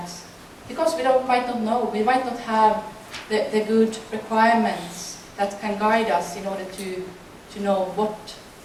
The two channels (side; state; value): both; identical; correlation 1.00